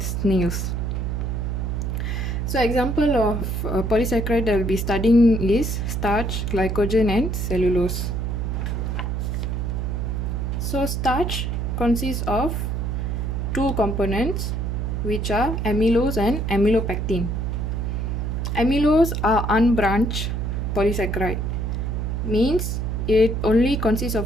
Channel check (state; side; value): noise; right; hum, 1 dB below the sound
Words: snails. So example of polysaccharide that we'll be studying is starch, glycogen and cellulose. So starch consists of two components, which are amylose and amylopectin. Amylose are unbranched polysaccharide, means it only consists